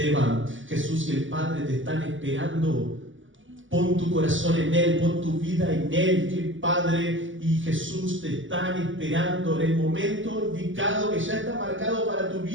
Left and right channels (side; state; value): left; late; 0.56 ms